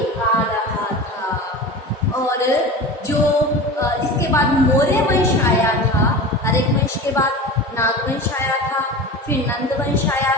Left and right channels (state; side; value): normal; both; correlation 0.32